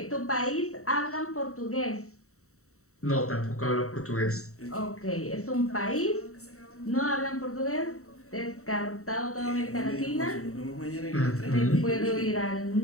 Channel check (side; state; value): right; late; 0.64 ms